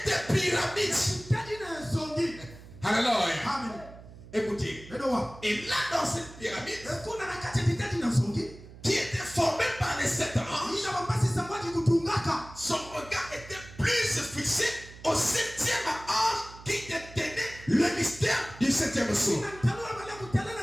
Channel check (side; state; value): right; noise; hum, 18 dB below the sound